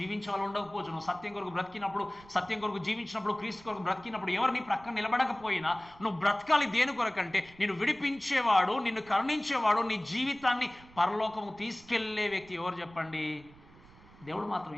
వాళ్ళు ఉండకపోవచ్చు. నువ్వు సత్యం కొరకు బ్రతికినప్పుడు, సత్యం కొరకు జీవించినప్పుడు, క్రీస్తు కొరకు బ్రతికినప్పుడు ఎవరు నీ పక్కన నిలబడకపోయినా నువ్వు బ్రతకాలి దేని కొరకంటే నిన్ను విడిపించేవాడు, నిన్ను కరుణించేవాడు, నీ జీవితాన్ని పరలోకము తీసుకెళ్లే వ్యక్తి ఎవరు చెప్పండి? దేవుడు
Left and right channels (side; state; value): right; noise; rumble, 23 dB below the sound